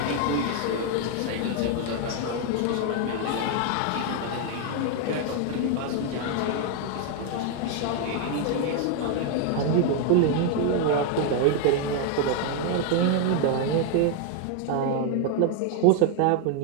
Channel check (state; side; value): different; both; correlation 0.00